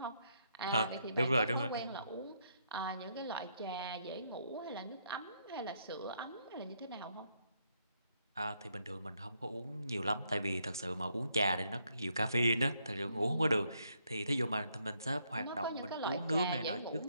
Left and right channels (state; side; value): inverted; both; correlation -0.75